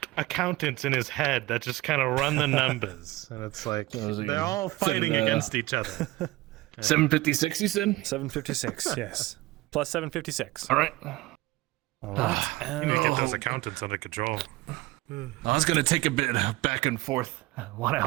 accountants in his head that just kind of run the numbers. And it's like, they're all fighting against each other. 756, you said? 756, yes. Plus 756. All right. All right. You need to get those accountants under control. I was going to take a bit back and forth. Want to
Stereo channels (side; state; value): left; quieter; 19.4 dB